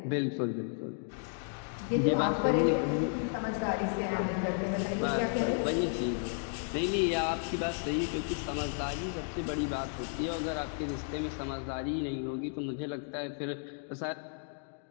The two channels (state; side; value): silent; right; 56 dB below the other